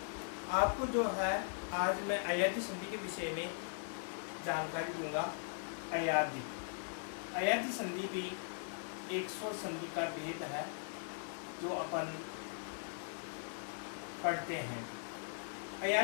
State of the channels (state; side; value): silent; right; digital silence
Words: आपको जो है आज मैं अयादी संधि के विषय में जानकारी दूंगा। अयादी अयादी संधि भी एक स्वर संधि का भेद है जो अपन पढ़ते हैं।